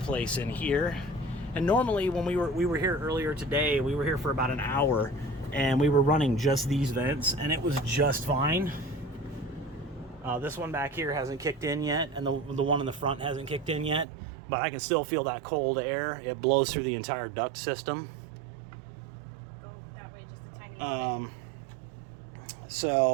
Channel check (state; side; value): drops out; left; at 14.1 s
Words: place in here. And normally when we were here earlier today, we were here for about an hour, and we were running just these vents, and it was just fine. This one back here hasn't kicked in yet, and the one in the front hasn't kicked in yet. But I can still feel that cold air. It blows through the entire duct system.